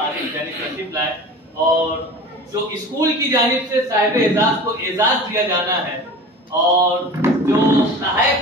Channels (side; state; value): both; normal; correlation 0.37